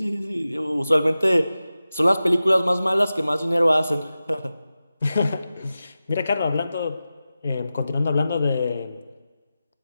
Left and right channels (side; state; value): both; inverted; correlation -0.94